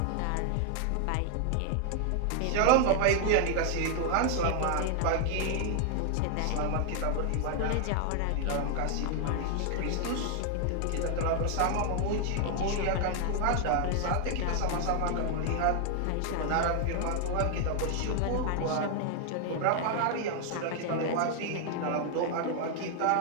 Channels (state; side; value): different; both; correlation 0.00